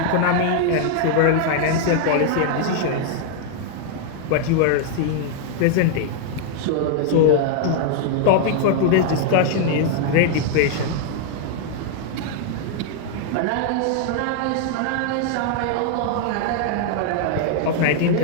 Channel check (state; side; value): different; both; correlation 0.00